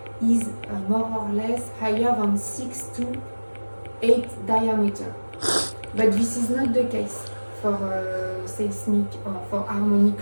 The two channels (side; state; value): both; inverted; correlation -1.00